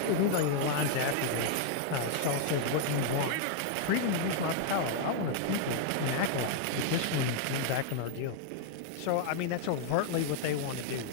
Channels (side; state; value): both; different; correlation -0.01